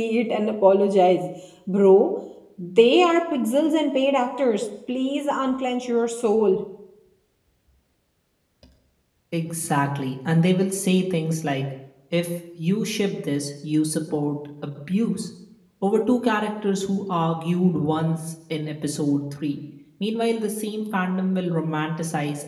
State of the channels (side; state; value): both; identical; correlation 1.00